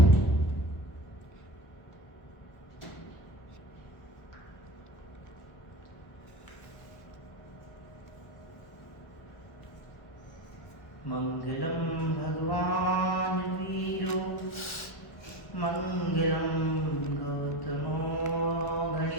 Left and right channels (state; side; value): late; right; 1.1 ms